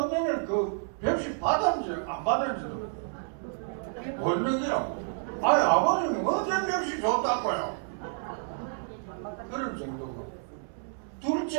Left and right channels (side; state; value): left; silent; 58 dB below the other